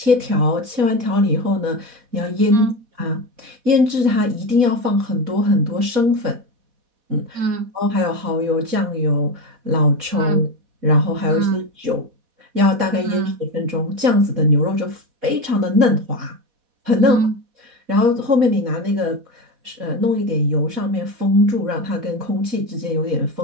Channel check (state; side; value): late; left; 4.1 ms